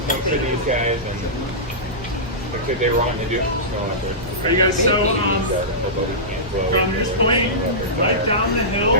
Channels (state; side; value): normal; both; correlation -0.17